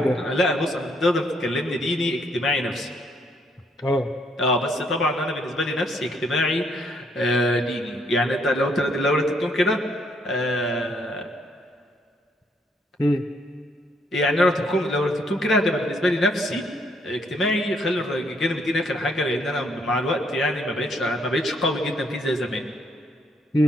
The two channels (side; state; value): both; normal; correlation 0.70